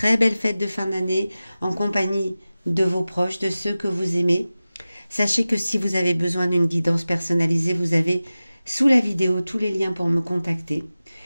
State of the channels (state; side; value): inverted; both; correlation -0.96